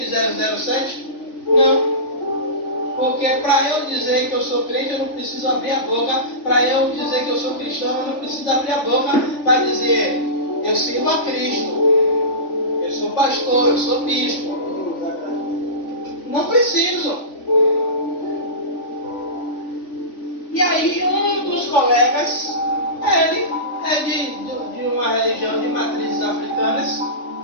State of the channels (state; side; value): late; right; 3.5 ms